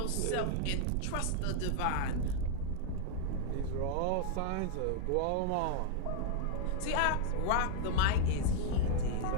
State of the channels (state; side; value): different; both; correlation 0.00